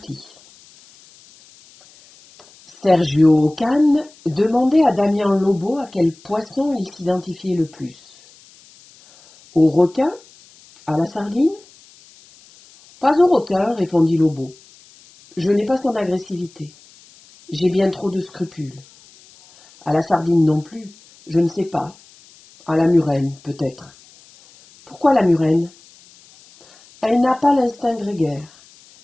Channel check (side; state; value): left; noise; hiss, 26 dB below the sound